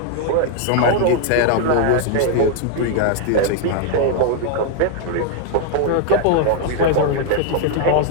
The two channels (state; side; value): different; both; correlation 0.00